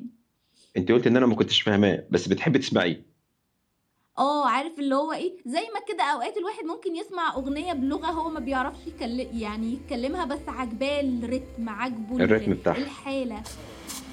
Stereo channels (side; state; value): both; identical; correlation 1.00